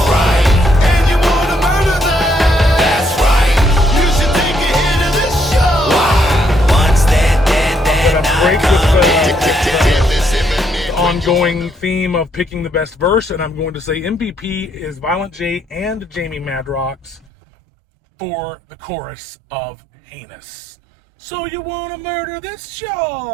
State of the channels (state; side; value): drops out; left; at 17.2 s